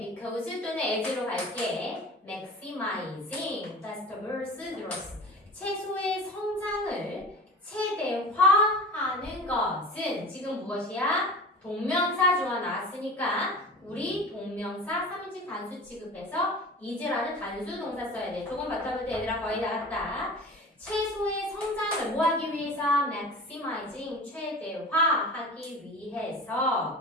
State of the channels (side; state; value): both; normal; correlation 0.36